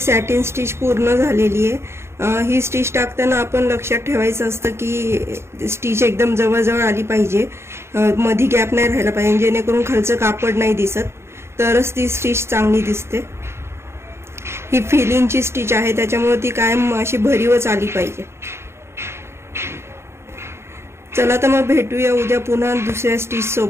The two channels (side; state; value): left; late; 0.13 ms